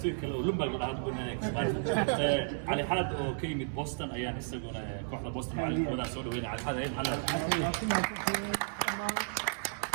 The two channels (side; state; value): left; silent; 56 dB below the other